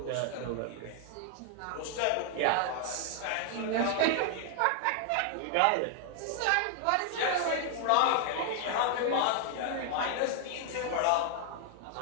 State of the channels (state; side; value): different; both; correlation 0.00